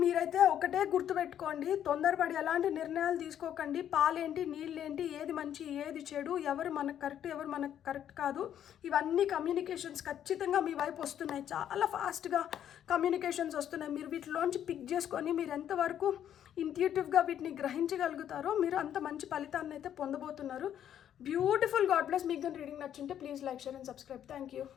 మీరైతే ఒకటే గుర్తుపెట్టుకోండి, తొందరపడి ఎలాంటి నిర్ణయాలు తీసుకోకండి. పాలేంటి, నీళ్ళేంటి, ఏది మంచి ఏది చెడు, ఎవరు మనకు కరెక్ట్ ఎవరు మనకు కరెక్ట్ కాదు, ఇవన్నీ కమ్యూనికేషన్స్ ఖచ్చితంగా మీ వైపు వస్తున్నాయి. చాలా ఫాస్ట్గా కమ్యూనికేషన్స్ వస్తున్నాయి. మీరు వీటిలోంచి పిక్ చేసుకొని మీరు ఎంతవరకు ఇంట్యూటివ్గా వీటిని గ్రహించగలుగుతారో మీరు అంత మంచి ఫలితాన్ని అయితే పొందబోతున్నారు. బ్యూటిఫుల్. God bless. మీకు కానీ రీడింగ్ నచ్చుంటే please like, share and subscribe. Thank you.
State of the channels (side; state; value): right; quieter; 10.1 dB